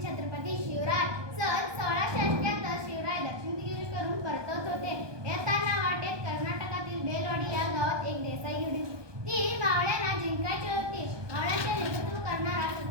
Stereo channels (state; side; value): late; left; 1.2 ms